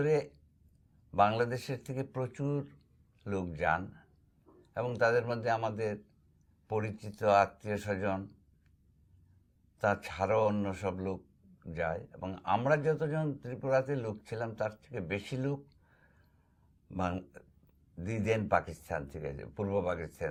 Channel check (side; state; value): both; identical; correlation 1.00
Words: বাংলাদেশের থেকে প্রচুর লোক যান এবং তাদের মধ্যে আমাদের পরিচিত আত্মীয় স্বজন তাছাড়াও অন্য সব লোক যায়, এবং আমরা যতজন ত্রিপুরাতে লোক ছিলাম তার থেকে বেশি লোক দিদেন পাকিস্তান থেকে, পূর্ব